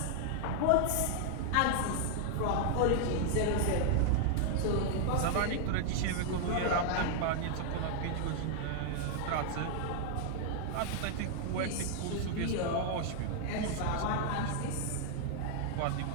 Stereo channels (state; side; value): different; both; correlation 0.00